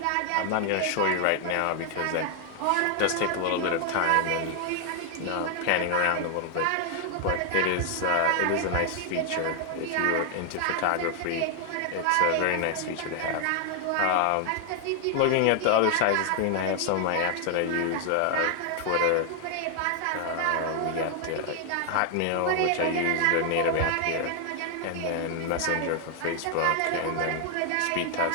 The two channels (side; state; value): both; different; correlation 0.00